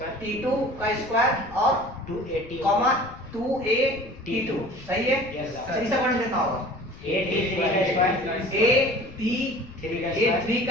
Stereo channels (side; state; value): left; noise; rumble, 19 dB below the sound